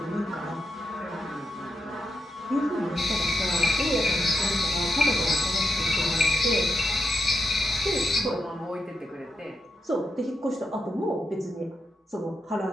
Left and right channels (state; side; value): normal; both; correlation 0.85